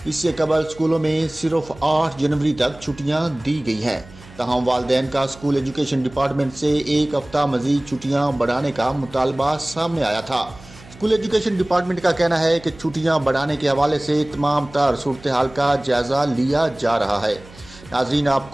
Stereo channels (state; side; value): noise; right; hum, 21 dB below the sound